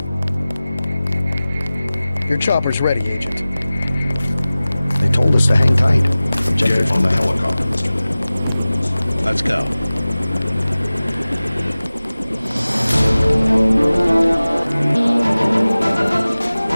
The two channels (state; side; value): inverted; both; correlation -0.97